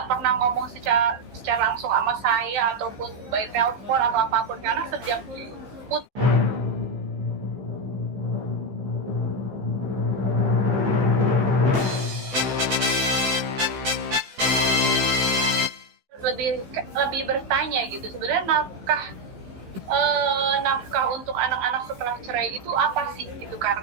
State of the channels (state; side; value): late; left; 15 ms